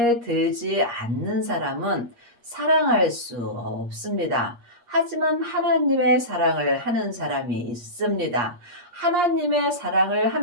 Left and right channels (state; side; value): late; left; 8.5 ms